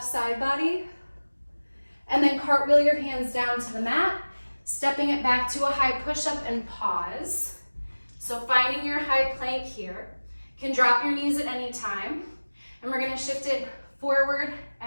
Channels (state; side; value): inverted; both; correlation -1.00